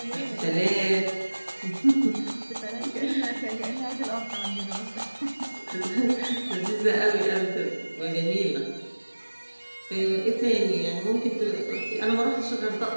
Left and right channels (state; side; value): inverted; both; correlation -1.00